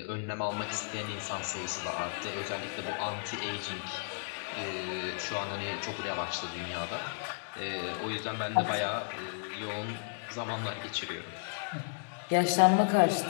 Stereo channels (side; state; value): right; silent; digital silence